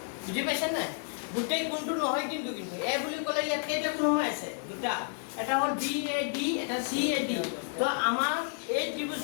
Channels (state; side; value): silent; right; 57 dB below the other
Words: বুজি পাইছা নাই গোটেই কোণটো নহয় কিন্তু এ বুলি ক'লে ইয়াত কেইটা কোণ হৈ আছে দুটা এটা হল বি এ ডি এটা সি এ ডি তো আমাৰ এই